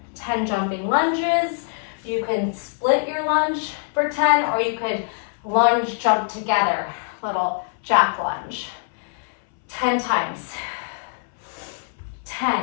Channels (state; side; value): silent; right; 63 dB below the other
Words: 10 jumping lunges. You can split your lunge for 10, or you could lunge, jump together. Little jack lunge. 10 times. 10,